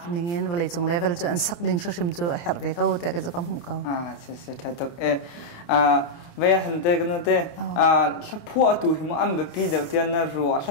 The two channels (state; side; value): late; right; 29 ms